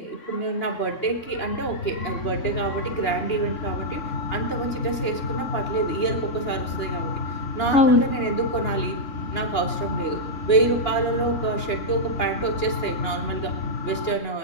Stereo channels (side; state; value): right; late; 2.9 ms